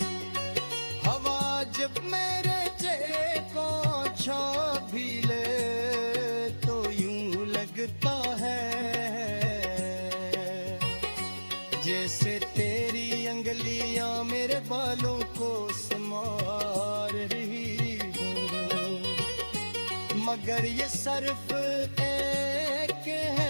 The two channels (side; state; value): both; inverted; correlation -1.00